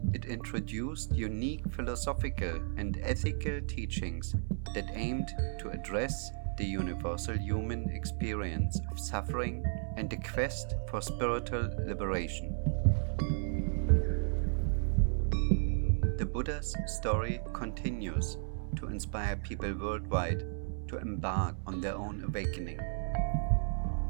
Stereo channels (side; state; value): left; silent; 55 dB below the other